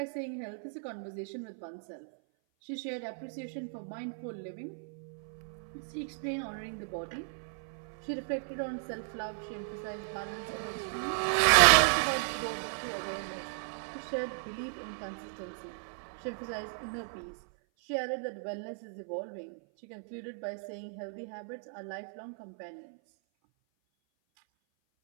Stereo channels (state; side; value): silent; left; 54 dB below the other